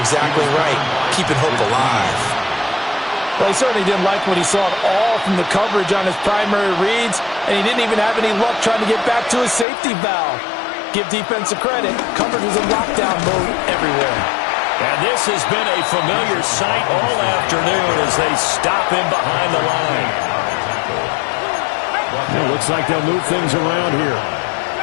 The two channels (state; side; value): drops out; right; at 9.7 s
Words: exactly right. Keeping hope alive. Well, he certainly didn't like what he saw at all from the coverage on his primary reads, and he didn't even have any luck trying to get back to his safety valve. Give defensive credit. Coverage was in lockdown mode everywhere. And this has been a familiar sight all afternoon as they stop him behind the line. It looks like they'll move things around here.